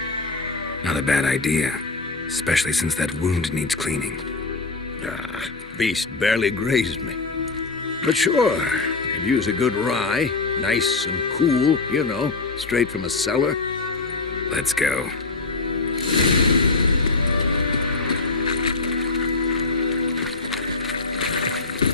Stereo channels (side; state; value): right; quieter; 3.7 dB